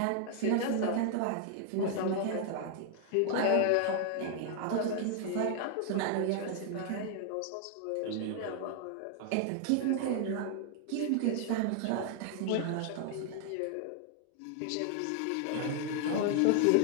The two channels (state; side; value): different; both; correlation 0.00